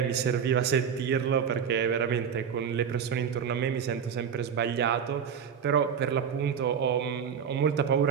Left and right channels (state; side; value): quieter; left; 7.5 dB